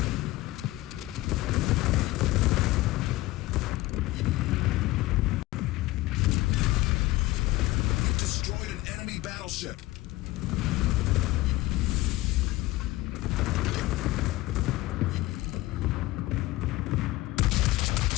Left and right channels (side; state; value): right; quieter; 18.2 dB